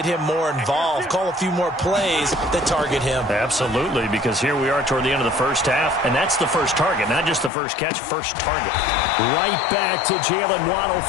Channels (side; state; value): right; drops out; at 7.5 s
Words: him more involved, call a few more plays that target him. Absolutely, because here we are toward the end of the first half, and that's the first target, not just the first catch, first target. Right back to Jalen Waddle